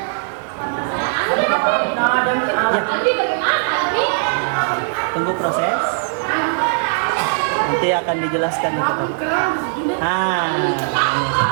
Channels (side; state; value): left; silent; digital silence